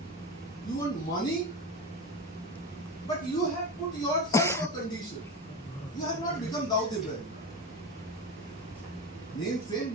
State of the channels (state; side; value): normal; both; correlation 0.22